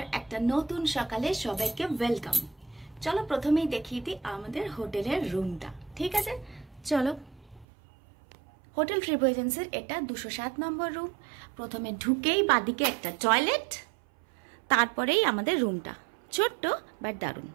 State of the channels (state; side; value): drops out; left; at 7.7 s